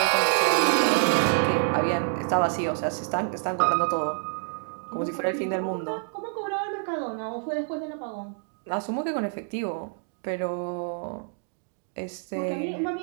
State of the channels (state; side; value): silent; left; 59 dB below the other